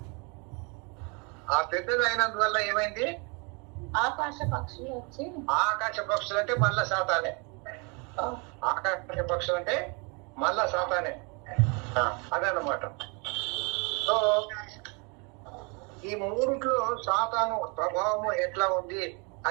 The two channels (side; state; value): left; quieter; 32.3 dB